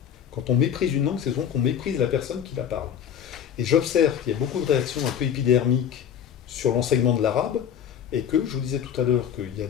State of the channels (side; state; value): right; quieter; 8.8 dB